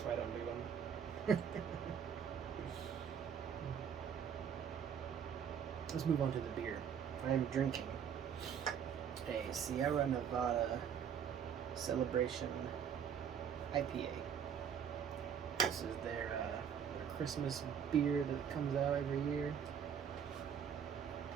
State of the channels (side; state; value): left; quieter; 7.9 dB